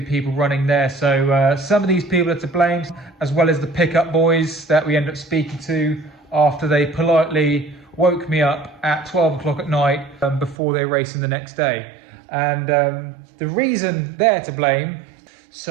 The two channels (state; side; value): drops out; left; at 10.6 s